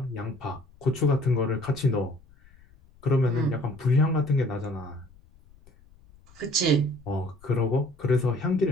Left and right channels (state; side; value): noise; left; rumble, 26 dB below the sound